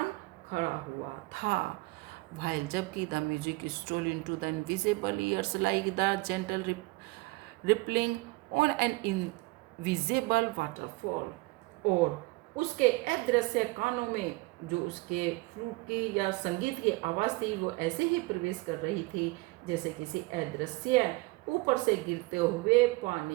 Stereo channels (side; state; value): left; quieter; 23.3 dB